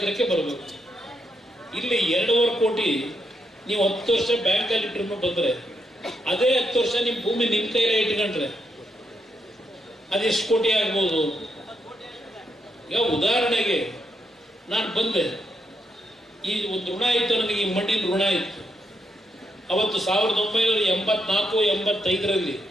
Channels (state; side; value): normal; both; correlation 0.80